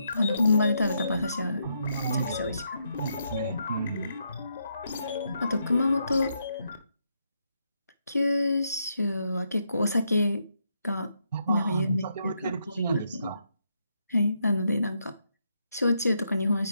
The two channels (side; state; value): both; inverted; correlation -0.79